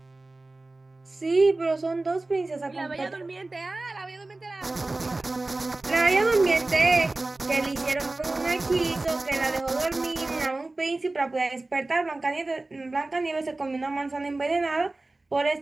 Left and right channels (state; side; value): quieter; left; 3.0 dB